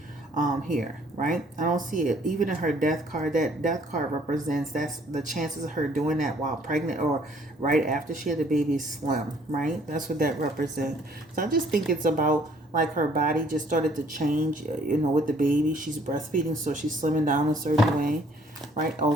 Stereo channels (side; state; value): both; normal; correlation 0.61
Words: Here, right? I don't see it. Even in her death card, that death card represents, that's the chances of her doing that while pregnant or right after she had the baby slim, right? That's what that represents. So I just think it's about like her body just started to change, with the baby. She's breastfeeding, so she's slimming down a certain way, right?